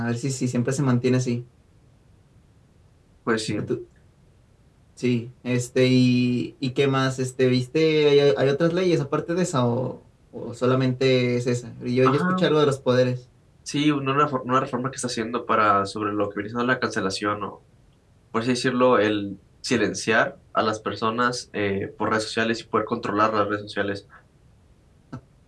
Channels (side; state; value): both; identical; correlation 1.00